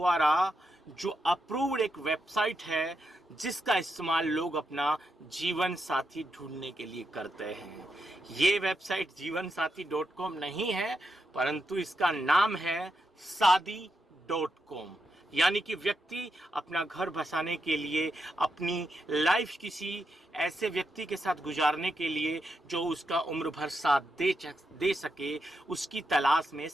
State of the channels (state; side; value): normal; both; correlation 0.84